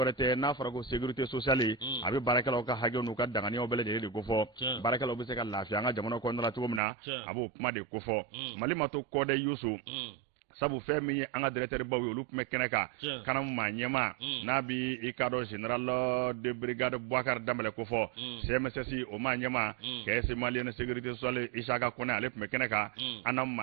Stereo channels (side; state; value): left; drops out; at 6.8 s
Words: tɛ n'a fɔra ko sécurité sociale a bɛ baarakɛlaw ka hakɛw n'u ka danganiyaw bɛɛ lajɛlen de ko fɔ baarakɛlaw bɛ se ka lafiya an ka jamana kɔnɔna la cogo min na a b'o kuma de ko fɔ Mali ma to kɔdɛ Yusu sabu fɛn min ye an ka directeur baw ye olu tun bɛ kɛnɛ kan kanamu maa ɲɛma n'a bi i ka dɔn général de brigade Bouakar Dambɛlɛ ko fɔ CMSS o maa ɲɛma caisse malienne sécurité sociale Isaka Kone ale tun bɛ kɛnɛ kan an na